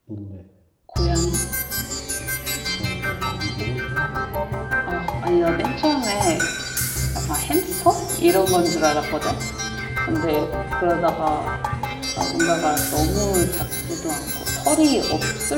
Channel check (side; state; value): both; identical; correlation 1.00